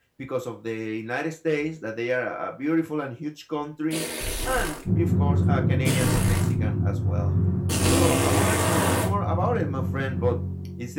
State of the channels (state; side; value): identical; both; correlation 1.00